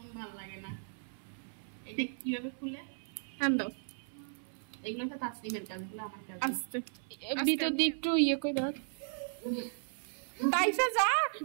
ভিতর দিয়ে একটু ইয়ে করে দাও। তাইফা যা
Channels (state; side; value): silent; left; 54 dB below the other